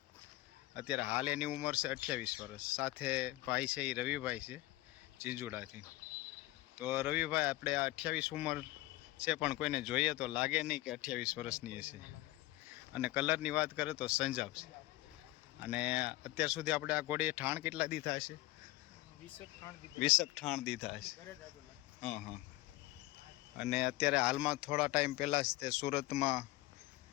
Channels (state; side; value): quieter; right; 18.3 dB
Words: અત્યારે હાલ એની ઉંમર છે 28 વર્ષ। સાથે ભાઈ છે એ રવિભાઈ છે જીંજુડાથી। તો રવિભાઈ આપણે આ 28 ઉંમર છે પણ કોઈને જોઈએ તો લાગે નહીં કે 28 વર્ષની હશે। અને કલરની વાત કરે તો સંજાબ છે। અને અત્યાર સુધી આપણે આ ઘોડીએ ઠાણ કેટલા દીધા હશે? 20 ઠાણ દીધા હશે। હા હા। અને અત્યારે હાલમાં થોડા ટાઈમ પહેલાં જ તે સુરતમાં